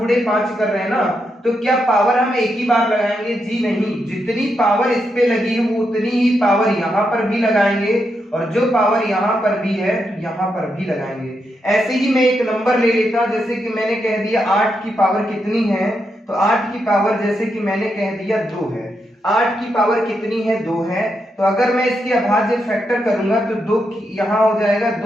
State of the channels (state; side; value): normal; both; correlation 0.83